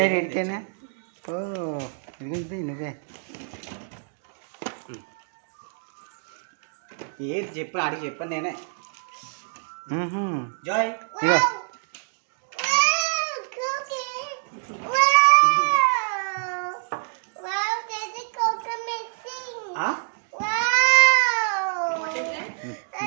ఎడికేనా? ఓ ఇదిగో నువ్వే ఏది చెప్పాను అడిగి చెప్పాను నేనే. జాయ్ ఇగో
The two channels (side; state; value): left; silent; 61 dB below the other